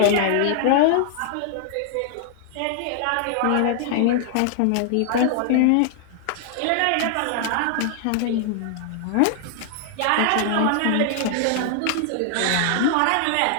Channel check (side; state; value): both; different; correlation 0.00